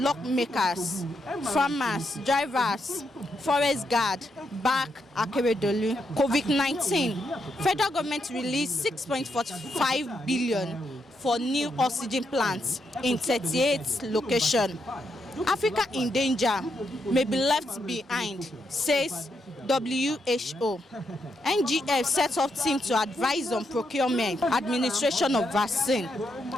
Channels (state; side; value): normal; both; correlation 0.80